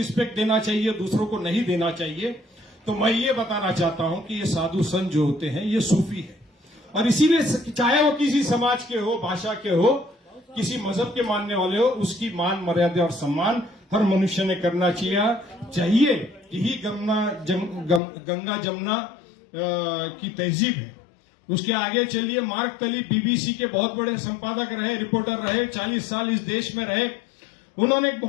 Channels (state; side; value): drops out; right; at 18.0 s